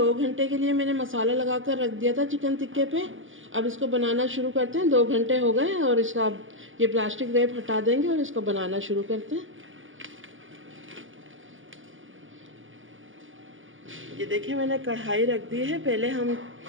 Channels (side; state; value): left; late; 0.57 ms